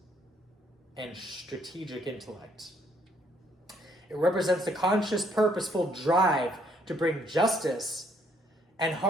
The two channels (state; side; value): normal; both; correlation 0.68